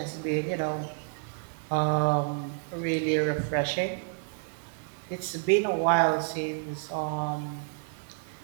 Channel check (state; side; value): silent; left; 58 dB below the other